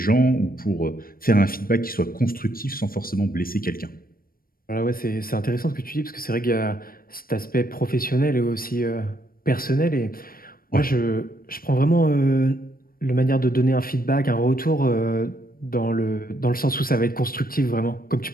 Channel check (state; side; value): late; right; 0.42 ms